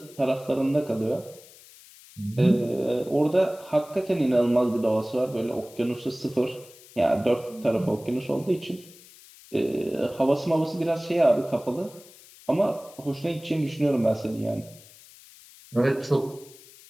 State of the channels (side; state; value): left; noise; hiss, 22 dB below the sound